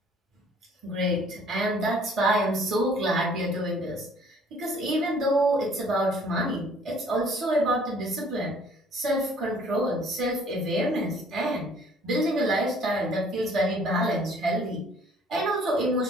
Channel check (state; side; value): normal; both; correlation 0.57